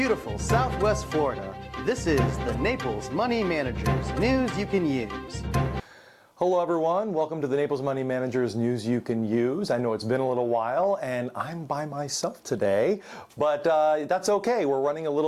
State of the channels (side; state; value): both; identical; correlation 1.00